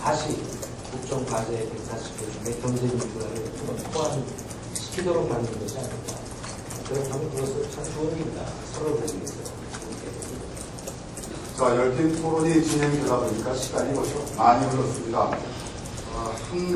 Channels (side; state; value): both; identical; correlation 1.00